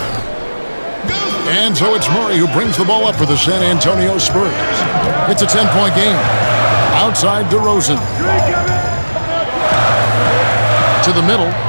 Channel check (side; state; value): both; inverted; correlation -1.00